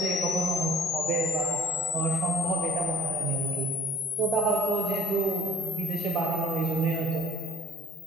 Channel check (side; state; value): both; normal; correlation 0.52